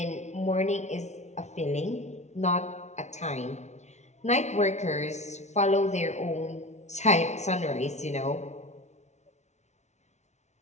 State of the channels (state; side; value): late; right; 0.32 ms